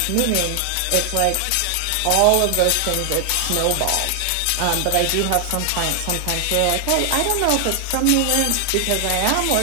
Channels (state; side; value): different; both; correlation 0.00